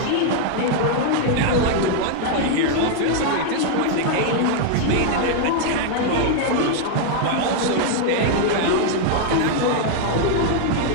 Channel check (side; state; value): both; different; correlation 0.00